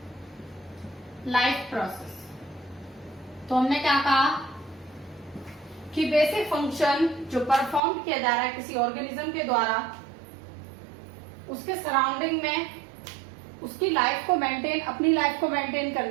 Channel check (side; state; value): left; drops out; at 7.8 s